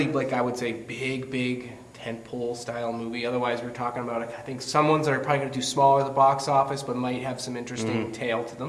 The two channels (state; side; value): identical; both; correlation 1.00